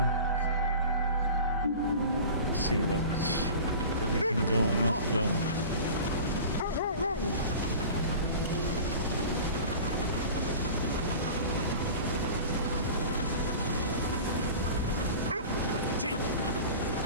Let's see where we can go and not go.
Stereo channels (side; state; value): both; inverted; correlation -0.38